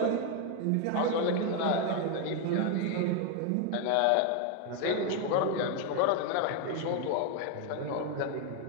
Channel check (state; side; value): different; both; correlation 0.01